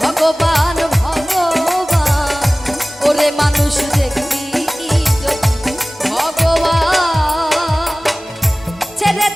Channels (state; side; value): normal; both; correlation 0.98